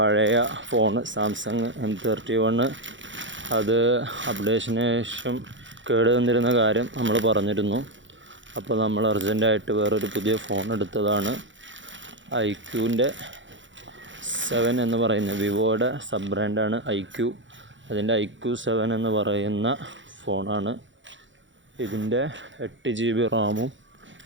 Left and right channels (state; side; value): late; left; 0.55 ms